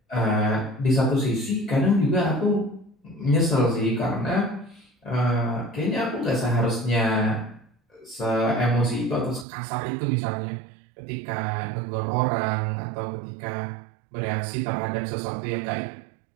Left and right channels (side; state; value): left; drops out; at 9.5 s